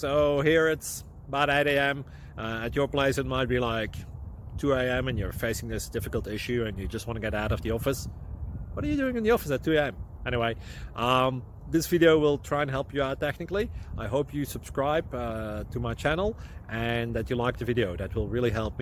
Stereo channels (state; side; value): identical; both; correlation 1.00